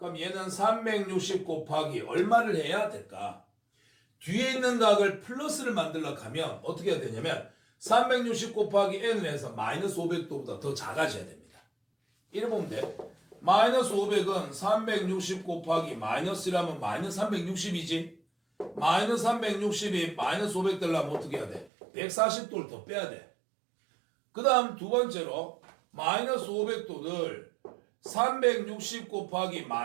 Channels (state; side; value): drops out; left; at 21.7 s